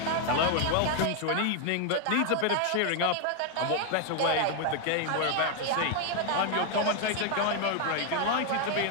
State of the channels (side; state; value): both; different; correlation 0.00